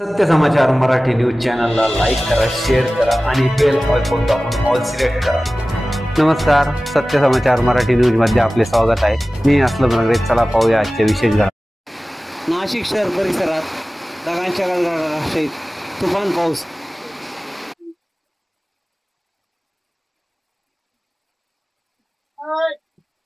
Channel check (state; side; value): normal; both; correlation 0.97